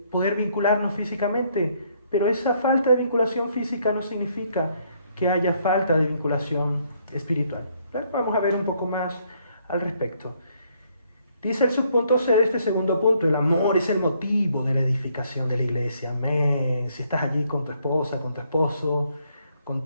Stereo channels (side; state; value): both; inverted; correlation -0.69